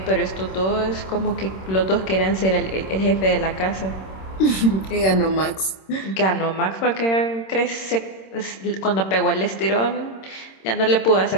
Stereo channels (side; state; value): right; late; 26 ms